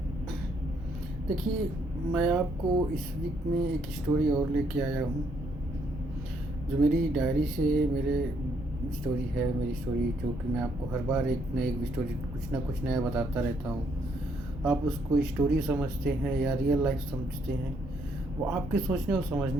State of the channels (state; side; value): normal; both; correlation 0.72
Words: देखिए, मैं आपको इस वीक में एक स्टोरी और लेके आया हूँ जो मेरी डायरी से मेरे स्टोरी है। मेरी स्टोरी जो कि मैं आपको हर बार एक न एक स्टोरी कुछ ना कुछ नया बताता रहता हूँ। आप उसको स्टोरी समझते हैं या रियल लाइफ समझते हैं, वो आपके सोचने और